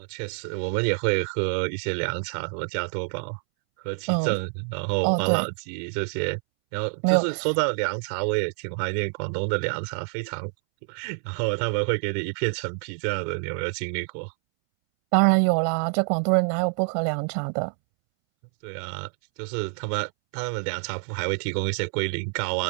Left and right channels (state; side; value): silent; left; 60 dB below the other